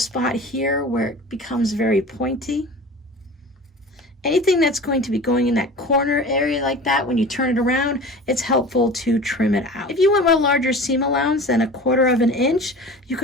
here where it becomes very pointy. Anything that's going to be going in that corner area like that, when you turn it around, it's helpful to trim it out. If you want a larger seam allowance than 1/4 of an inch, you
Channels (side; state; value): both; normal; correlation 0.38